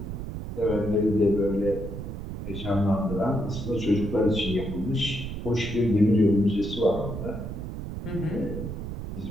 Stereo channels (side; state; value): right; noise; rumble, 7 dB below the sound